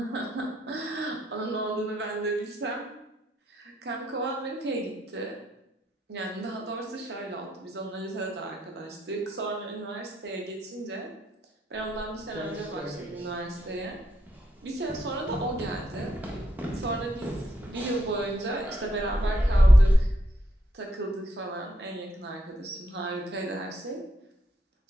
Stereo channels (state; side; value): normal; both; correlation 0.76